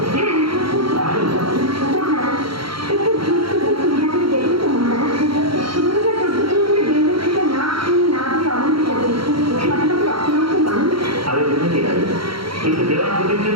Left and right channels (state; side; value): late; left; 0.74 ms